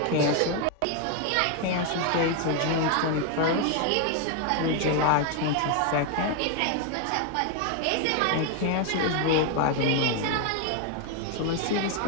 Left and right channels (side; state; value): both; different; correlation 0.01